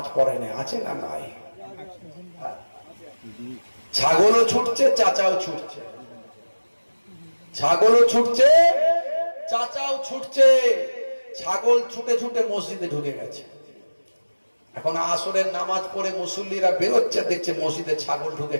পড়ে না আছে না নাই ছাগলও ছুটছে চাচাও ছুটছে ছাগলও ছুটছে চাচাও ছুটছে ছাগল ছুটে ছুটে মসজিদে ঢুকে গেছে এখন আসরের নামাজ পড়ে মুসল্লিরা বেরোচ্ছে দেখছে মসজিদে ছাগল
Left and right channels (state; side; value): inverted; both; correlation -1.00